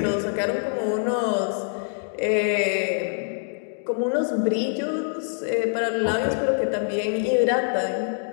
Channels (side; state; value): right; silent; digital silence